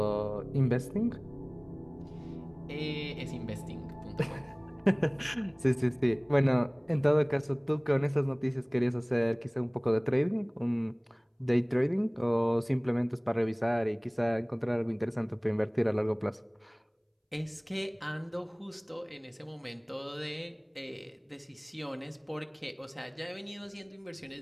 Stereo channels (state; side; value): identical; both; correlation 1.00